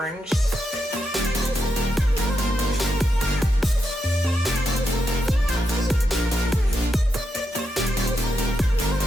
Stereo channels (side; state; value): both; normal; correlation 0.84